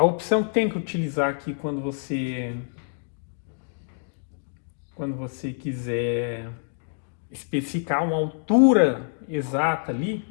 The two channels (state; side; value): silent; right; digital silence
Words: opção que tem que utilizar aqui quando você quiser especificar uma altura exata ali,